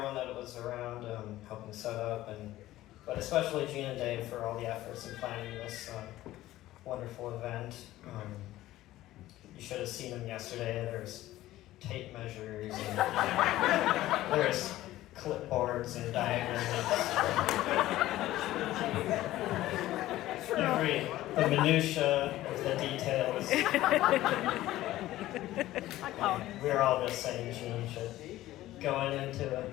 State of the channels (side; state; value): right; quieter; 15.5 dB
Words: that was around helping set up, but especially Gene and Dave for all the efforts in planning this wonderful event. You should have seen them yesterday. There's tape measures, and there's clipboards and diagrams. The minutia of the details. We're all just saying Gene should going into